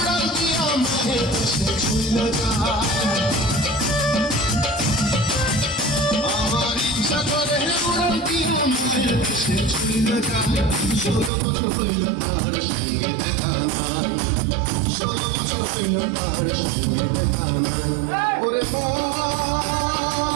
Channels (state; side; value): drops out; left; at 11.3 s